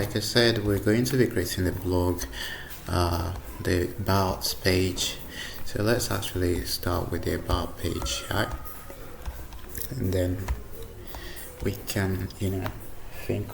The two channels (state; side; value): identical; both; correlation 1.00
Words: I said, we're going to be creating the blog, the about page. So let's actually start with the about page, right? And then we can think